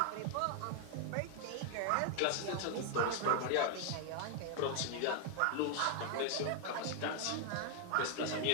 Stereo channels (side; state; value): both; different; correlation 0.00